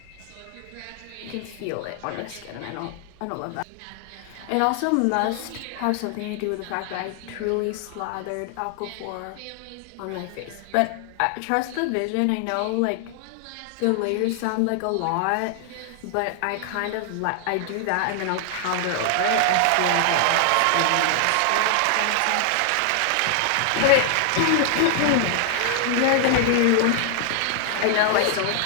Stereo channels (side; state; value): both; different; correlation 0.00